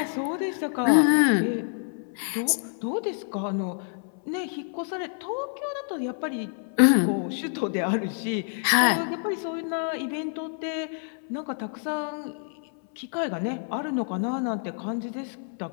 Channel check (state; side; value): silent; right; 60 dB below the other